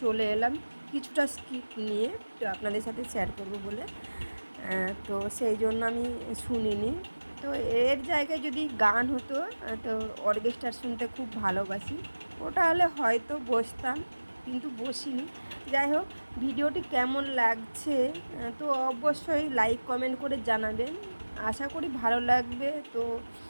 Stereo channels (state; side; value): inverted; both; correlation -1.00